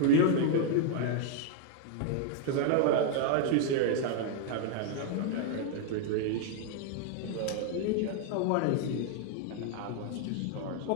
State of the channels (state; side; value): different; both; correlation 0.00